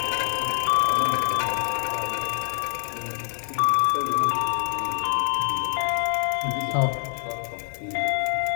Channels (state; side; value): silent; right; 62 dB below the other